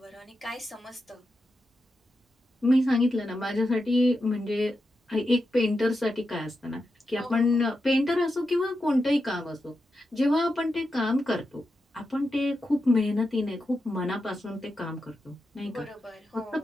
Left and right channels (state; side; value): normal; both; correlation 0.88